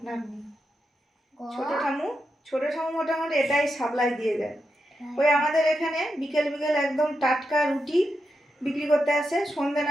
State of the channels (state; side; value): normal; both; correlation 0.86